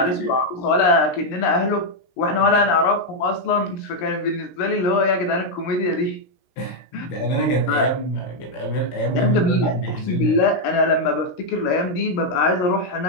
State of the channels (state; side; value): late; right; 16 ms